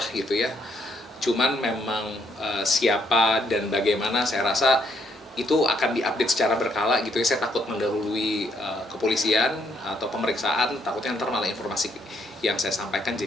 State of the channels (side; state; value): both; normal; correlation 0.72